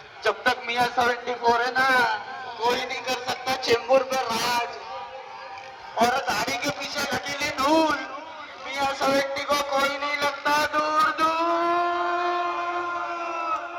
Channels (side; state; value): both; identical; correlation 1.00